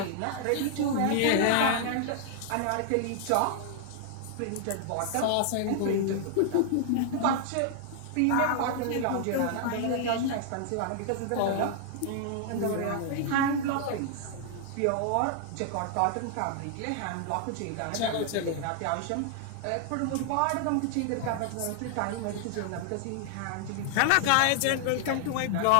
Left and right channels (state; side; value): different; both; correlation -0.01